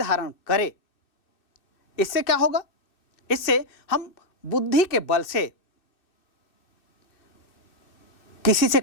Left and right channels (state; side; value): late; right; 2.6 ms